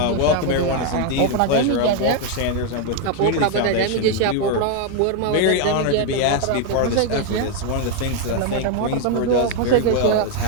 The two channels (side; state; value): both; different; correlation 0.01